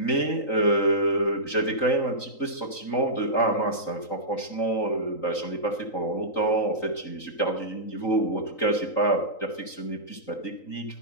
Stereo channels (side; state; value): right; late; 3.9 ms